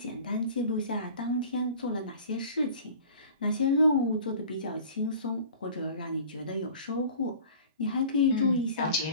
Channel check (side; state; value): both; inverted; correlation -0.43